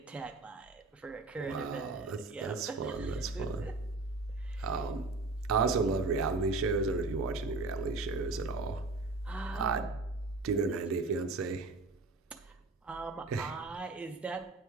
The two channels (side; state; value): left; quieter; 3.5 dB